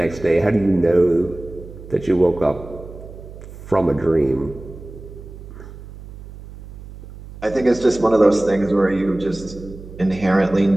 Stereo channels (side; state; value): right; noise; hum, 15 dB below the sound